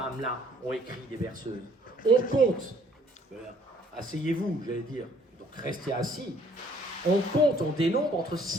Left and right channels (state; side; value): normal; both; correlation 0.60